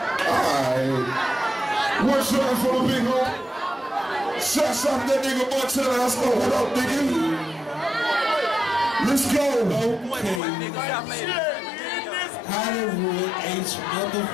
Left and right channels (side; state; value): right; drops out; at 10.4 s